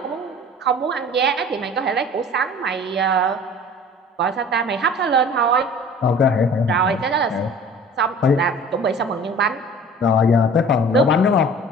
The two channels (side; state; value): both; normal; correlation 0.45